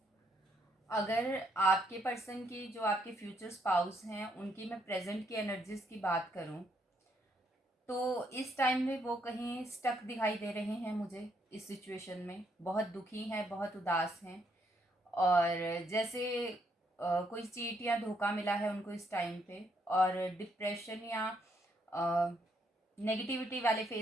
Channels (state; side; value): normal; both; correlation 0.73